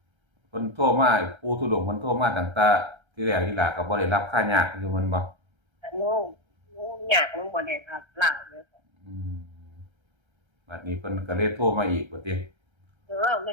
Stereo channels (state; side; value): late; left; 1.3 ms